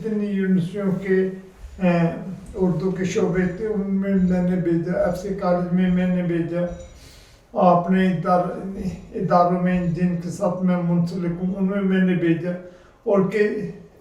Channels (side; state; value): both; identical; correlation 1.00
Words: یونیورسٹیوں کے اردو کے شعبے تھے ان میں نے بھیجا، FC کالج میں نے بھیجا، اپنے اداروں میں جن کے ساتھ میں منسلک ہوں ان میں نے بھیجا، اور کہ